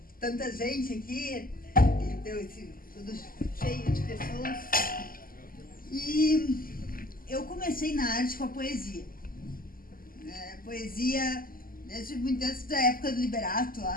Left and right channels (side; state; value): right; late; 0.42 ms